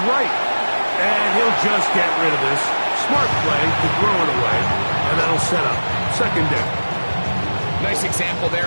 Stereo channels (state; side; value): inverted; both; correlation -1.00